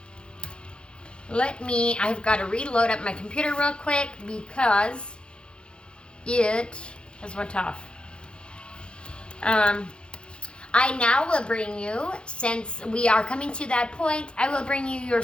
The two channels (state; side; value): late; right; 0.055 ms